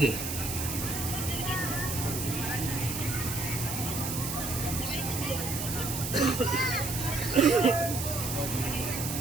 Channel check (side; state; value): right; noise; hiss, 4 dB below the sound